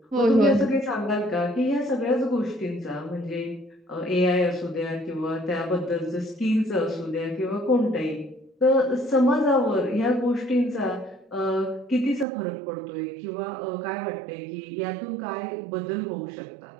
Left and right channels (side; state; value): left; drops out; at 12.2 s